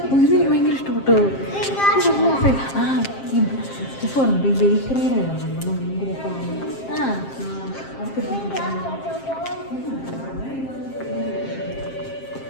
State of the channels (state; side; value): late; right; 7.5 ms